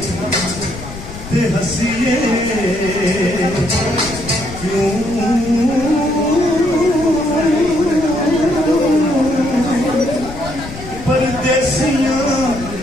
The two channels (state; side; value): noise; left; rumble, 12 dB below the sound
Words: ते हसीए क्यों परदेसियां